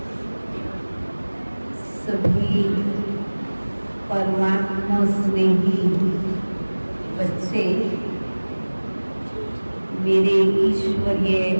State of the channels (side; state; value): both; inverted; correlation -1.00